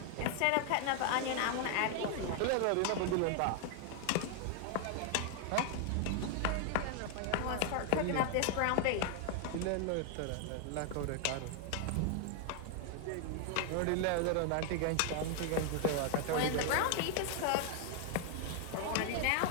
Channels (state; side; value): different; both; correlation 0.00